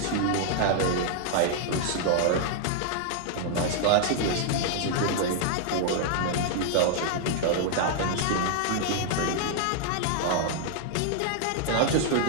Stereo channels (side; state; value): both; different; correlation -0.01